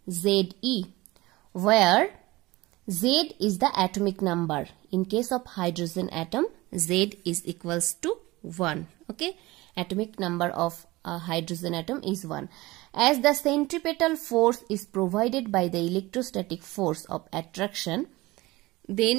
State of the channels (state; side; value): quieter; left; 20.3 dB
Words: Ze, where Z is the atomic number. In case of hydrogen atom, Z is equals to 1. Okay, atomic number of a hydrogen atom is 1. As the centripetal force is provided by the electrostatic force of attraction,